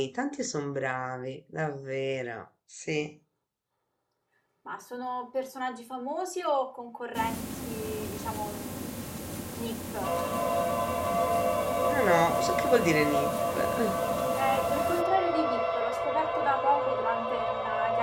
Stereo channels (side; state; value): both; identical; correlation 1.00